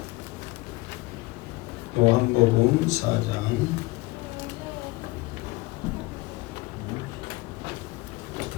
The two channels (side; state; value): right; quieter; 22.0 dB